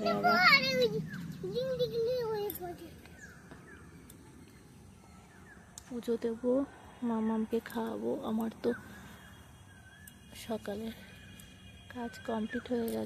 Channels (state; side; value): identical; both; correlation 1.00